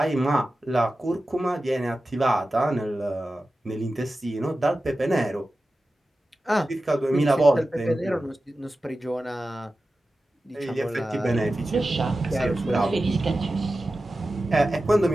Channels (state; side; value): normal; both; correlation 0.94